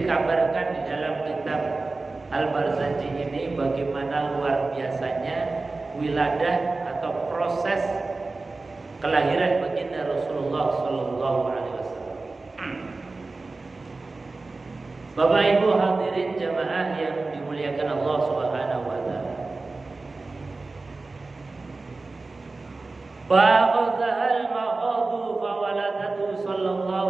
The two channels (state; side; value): quieter; left; 3.5 dB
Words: dikabarkan di dalam kitab Al-Barzanji ini bagaimana luar biasanya wiladah atau proses kelahiran baginda Rasulullah Sallallahu Alaihi Wasallam. Bapak Ibu hadirin jamaah yang dimuliakan Allah Subhanahu Wa Taala. Fa'adhal ma'adu fawaladatu